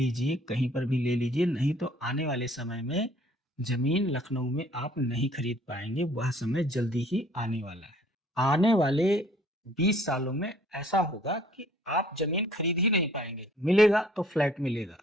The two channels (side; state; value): both; normal; correlation 0.57